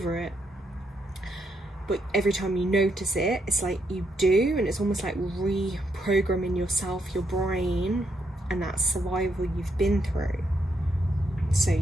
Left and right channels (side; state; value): both; normal; correlation 0.78